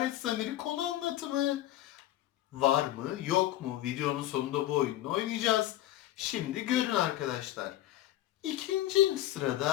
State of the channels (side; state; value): right; quieter; 14.2 dB